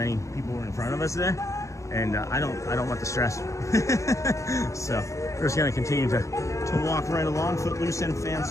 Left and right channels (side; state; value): right; late; 0.15 ms